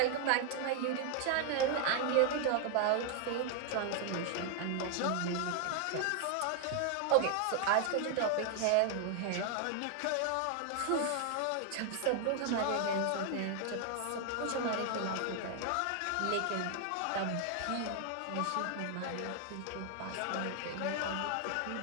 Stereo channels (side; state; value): both; different; correlation 0.00